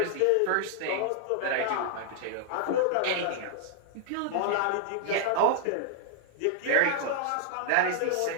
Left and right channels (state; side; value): different; both; correlation -0.01